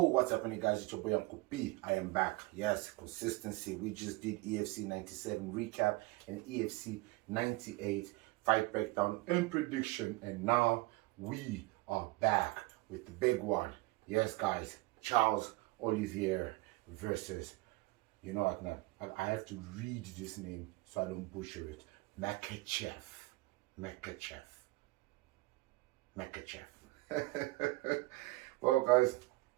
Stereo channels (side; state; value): left; quieter; 21.4 dB